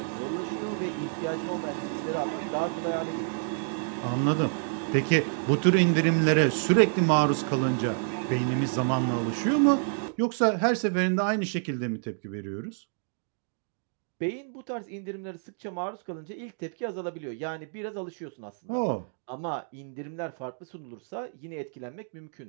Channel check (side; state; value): left; silent; digital silence